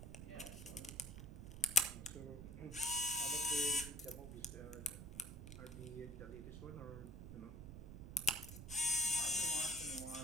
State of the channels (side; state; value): right; noise; rumble, 10 dB below the sound